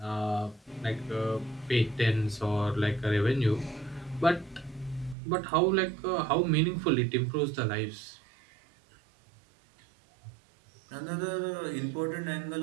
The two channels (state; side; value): drops out; left; at 5.2 s